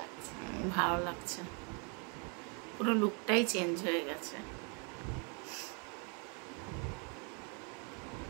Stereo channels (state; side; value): quieter; left; 36.2 dB